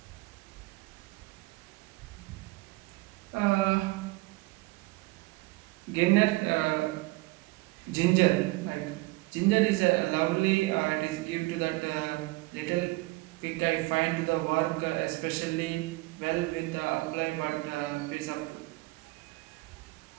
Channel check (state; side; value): quieter; left; 22.1 dB